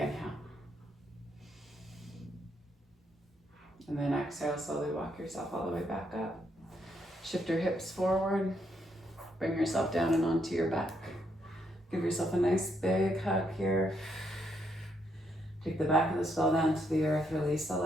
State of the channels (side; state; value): both; normal; correlation 0.76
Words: And then exhale, slowly walk yourself all the way back up. Shift your hips forward. Bring yourself down and onto your back. Give yourself a nice big hug here. Take the back of the skull down to the earth. Release the